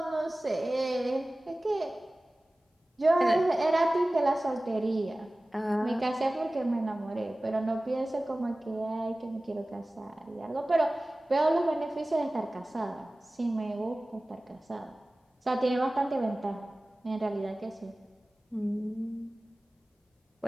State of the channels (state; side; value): normal; both; correlation 0.97